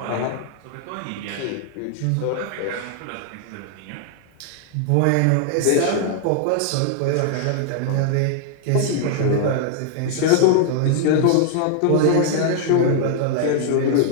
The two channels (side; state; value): both; different; correlation 0.00